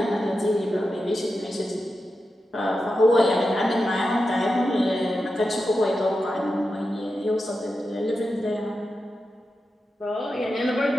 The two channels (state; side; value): normal; both; correlation 0.90